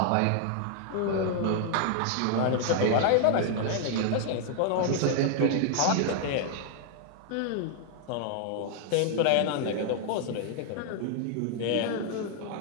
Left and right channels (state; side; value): different; both; correlation 0.00